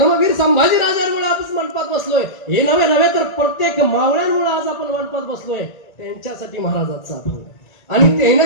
संभाजी राजांमुळे आपण मंडपात बसलोय, हे नव्हे तर प्रत्येक मावळ्यांमुळे आज आपण मंडपात बसलोय, त्यांच्यासाठी महाराजांचा अभंग. आणि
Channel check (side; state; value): right; late; 1.9 ms